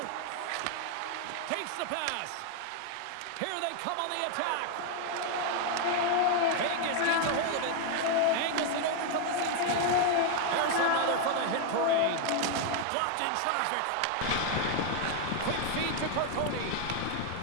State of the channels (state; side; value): different; both; correlation 0.00